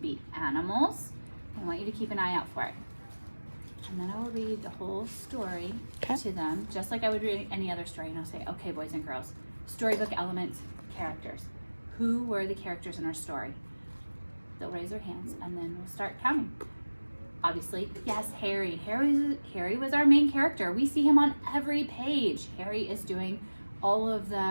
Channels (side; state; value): both; inverted; correlation -1.00